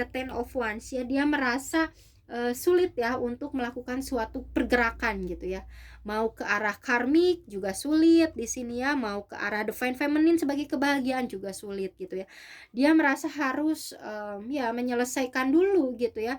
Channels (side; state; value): both; identical; correlation 1.00